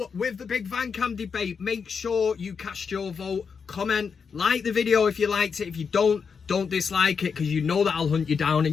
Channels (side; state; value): right; quieter; 6.0 dB